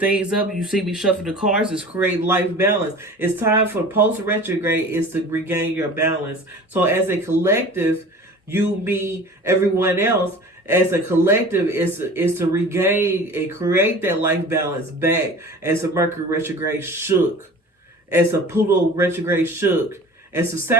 up. You see me shuffle the cards, is create life balance. It's time for post retrograde is to regain your balance. So as a collective, you, me, everyone else, as a collective is to regain and create that life balance back, as the Mercury retrograde shook, as the Pluto retrograde shook, as the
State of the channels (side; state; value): both; normal; correlation 0.41